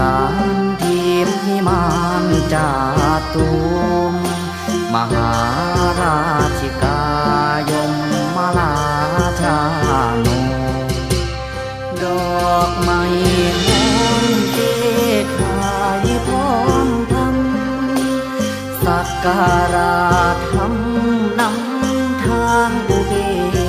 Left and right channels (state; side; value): identical; both; correlation 1.00